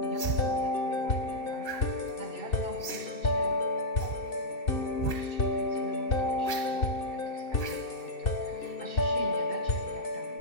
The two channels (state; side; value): late; right; 2.7 ms